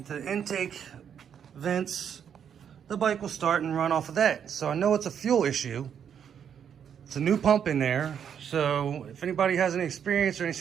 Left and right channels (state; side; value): quieter; left; 8.2 dB